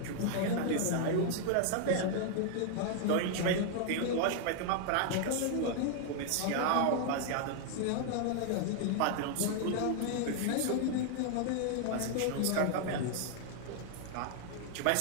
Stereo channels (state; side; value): different; both; correlation 0.00